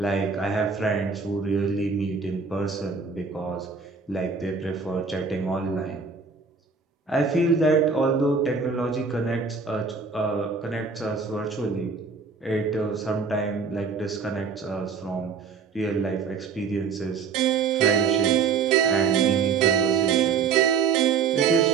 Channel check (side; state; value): left; quieter; 5.5 dB